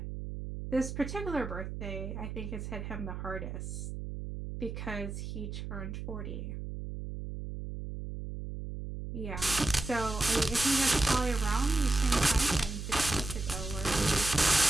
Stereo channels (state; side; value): noise; right; hum, 7 dB below the sound